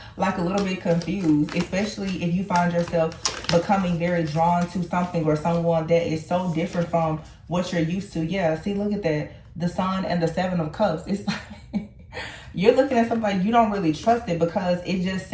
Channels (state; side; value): identical; both; correlation 1.00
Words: like a little bit confused, especially if you find yourself becoming very drawn to something or someone that is so different from what you're used to. Yeah, see, look at that. The Sun and the Seven of Cups. It's like you're looking at something like you don't really trust it because it just